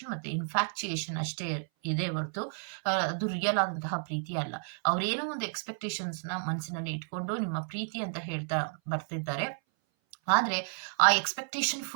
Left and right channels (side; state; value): left; silent; 57 dB below the other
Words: ಮತ್ತೆ ಇನ್ಫ್ಯಾಕ್ಚುಯೇಷನ್ ಅಷ್ಟೇ ಇದೆ ಹೊರತು ಅದು ರಿಯಲ್ ಆದಂತಹ ಪ್ರೀತಿ ಅಲ್ಲ. ಅವ್ರೇನೋ ಒಂದು ಎಕ್ಸ್ಪೆಕ್ಟೇಷನ್ಸ್ ನ ಮನಸ್ಸಿನಲ್ಲಿ ಇಟ್ಕೊಂಡು ನಿಮ್ಮ ಪ್ರೀತಿ ಅಂತ ಹೇಳ್ತಾ ಬರ್ತಿದ್ದಾರೆ. ಆದ್ರೆ ಆ ಎಕ್ಸ್ಪೆಕ್ಟೇಷನ್